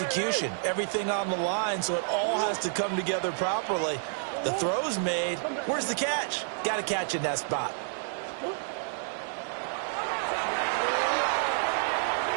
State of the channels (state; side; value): silent; left; 58 dB below the other